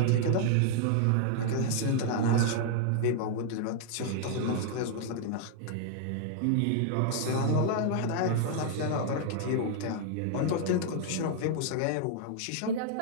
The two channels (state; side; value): different; both; correlation 0.00